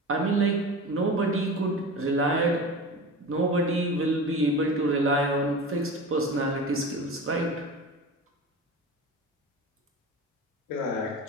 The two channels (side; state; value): both; normal; correlation 0.32